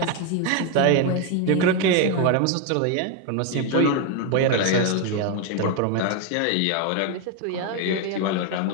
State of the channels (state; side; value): different; both; correlation 0.01